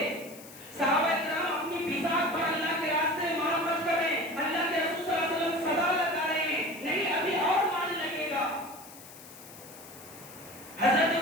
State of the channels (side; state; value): left; noise; hiss, 18 dB below the sound